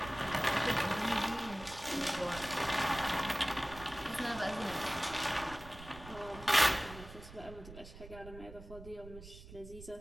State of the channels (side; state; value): right; noise; rumble, 15 dB below the sound